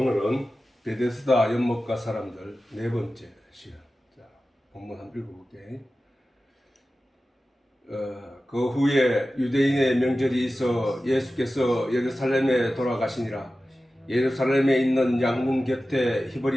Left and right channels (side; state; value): both; normal; correlation 0.95